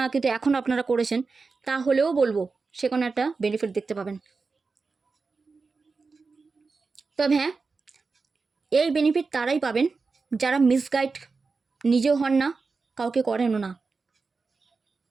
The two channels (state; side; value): quieter; left; 4.4 dB